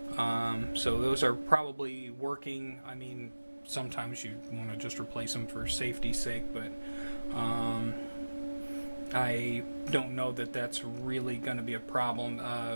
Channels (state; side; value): inverted; both; correlation -1.00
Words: So those are probably working. I mean, sometimes you want to just replace them for safety's sake, but I don't know that that's really going to be a problem.